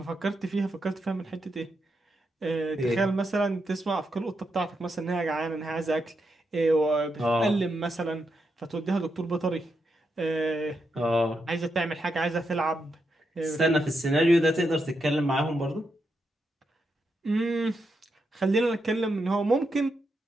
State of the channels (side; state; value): both; normal; correlation 0.84